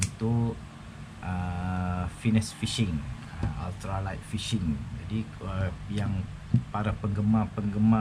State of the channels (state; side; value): identical; both; correlation 1.00